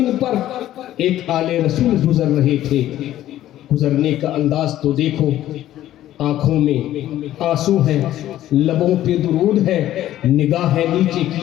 پر ایک آل رسول گزر رہے تھے، گزرنے کا انداز تو دیکھو، آنکھوں میں آنسو ہے، لبوں پہ درود ہے، نگاہیں نیچے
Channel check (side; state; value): right; quieter; 13.2 dB